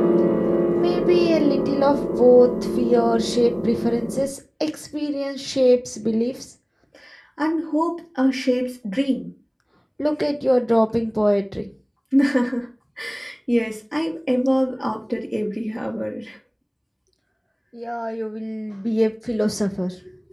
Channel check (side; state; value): both; identical; correlation 1.00